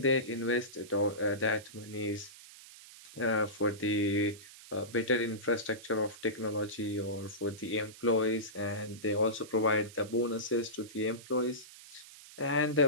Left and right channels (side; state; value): right; noise; hiss, 18 dB below the sound